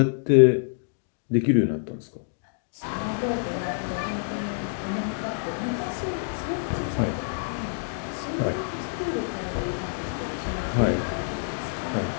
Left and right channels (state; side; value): silent; right; digital silence